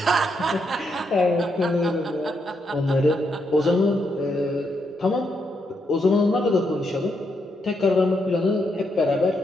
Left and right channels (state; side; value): normal; both; correlation 0.79